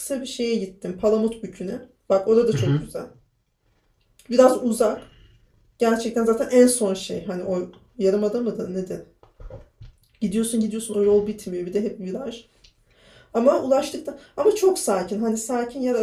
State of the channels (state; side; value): identical; both; correlation 1.00